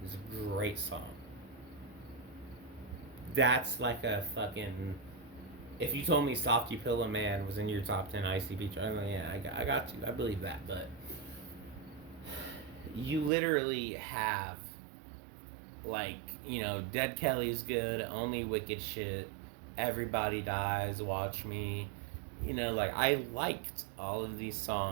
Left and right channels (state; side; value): drops out; left; at 13.3 s